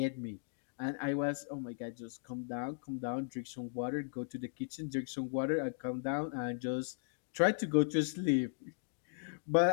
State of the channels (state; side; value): silent; right; digital silence